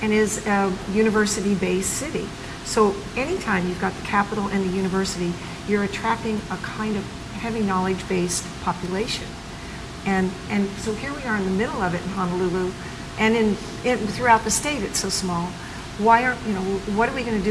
and is a university-based city. So anytime you've got the capital and the university, you're attracting a kind of heavy knowledge-based population. And so here we are in the middle of it in Honolulu, and throughout the state it's so small. What are we going to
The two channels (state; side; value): identical; both; correlation 1.00